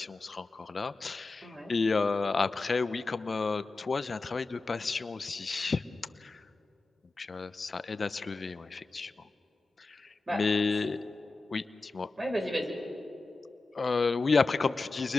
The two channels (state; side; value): quieter; right; 3.6 dB